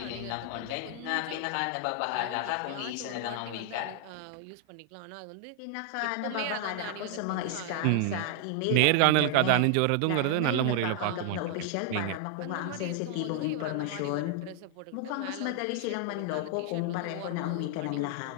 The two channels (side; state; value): both; different; correlation 0.00